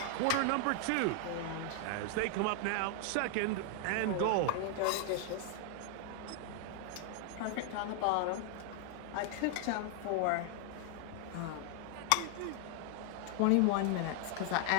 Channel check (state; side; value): different; both; correlation 0.00